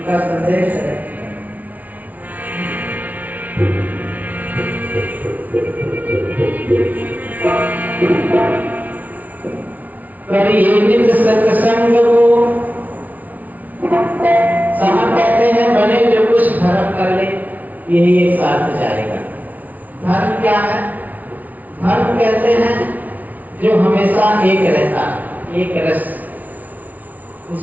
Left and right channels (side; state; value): left; late; 0.075 ms